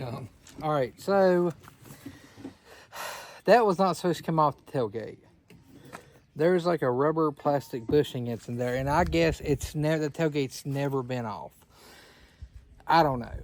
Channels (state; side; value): identical; both; correlation 1.00